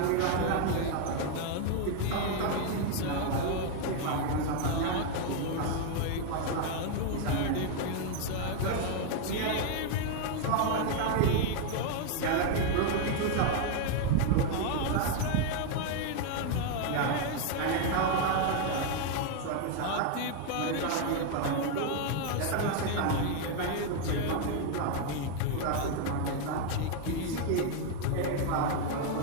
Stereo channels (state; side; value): different; both; correlation 0.00